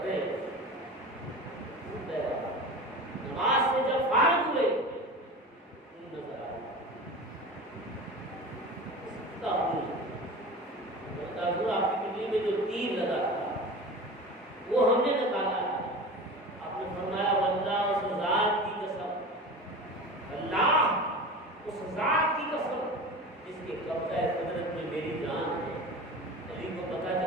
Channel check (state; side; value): normal; both; correlation 0.32